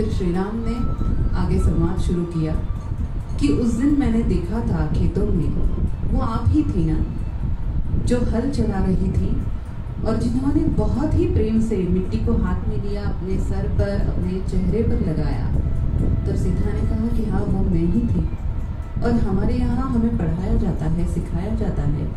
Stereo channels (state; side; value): identical; both; correlation 1.00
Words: श्री राम ने आगे संवाद शुरू किया कि उस दिन मैंने देखा था खेतों में वो आप ही थी ना, जो हल चला रही थी और जिन्होंने बहुत ही प्रेम से मिट्टी को हाथ में लिया, अपने सर पर, अपने चेहरे पर लगाया। तब सीता ने कहा कि हाँ, वो मैं ही थी। और हमारे यहाँ हमें पढ़ाया जाता है, सिखाया जाता है